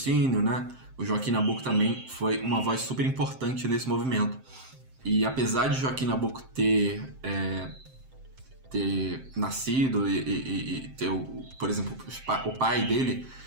né? O Joaquim Nabuco também foi uma voz super importante nesse movimento. E apesar de Joaquim Nabuco ter nascido e ter, por exemplo, o pai dele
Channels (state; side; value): late; left; 7.6 ms